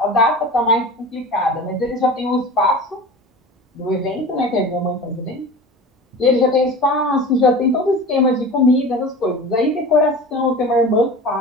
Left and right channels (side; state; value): both; normal; correlation 0.34